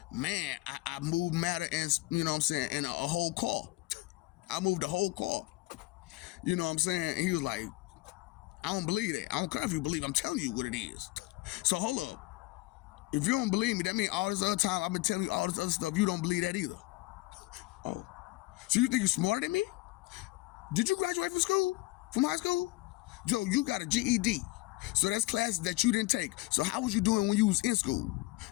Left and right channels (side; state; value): right; quieter; 21.1 dB